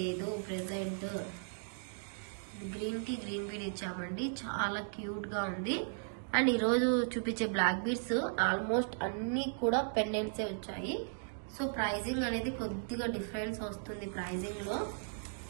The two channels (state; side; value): silent; left; digital silence